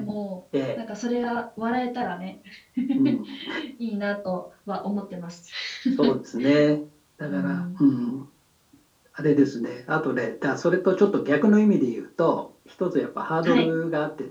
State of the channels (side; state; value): both; identical; correlation 1.00